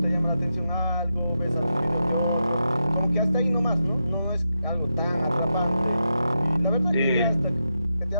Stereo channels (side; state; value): both; inverted; correlation -0.86